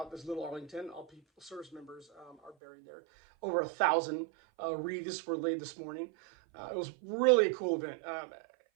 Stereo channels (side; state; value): left; drops out; at 2.6 s